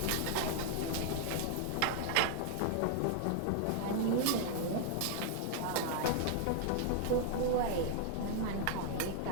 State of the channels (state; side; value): different; both; correlation 0.00